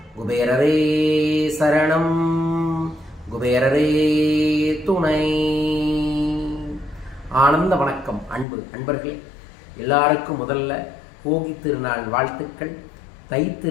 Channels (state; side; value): drops out; right; at 8.5 s